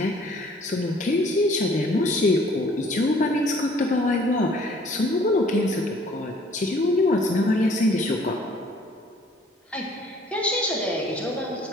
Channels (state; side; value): normal; both; correlation 0.57